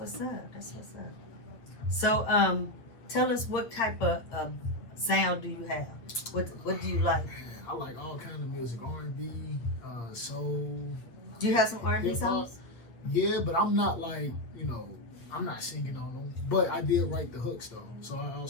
up. That's what's up. So, tell us what type of sound do you have? What do you like? I like all kind of music, R&B, soul. Do you have some R&B songs? Yeah, but I'm not like, I'm not singing on them. But I did write the hooks though, so I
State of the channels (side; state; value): right; late; 8.7 ms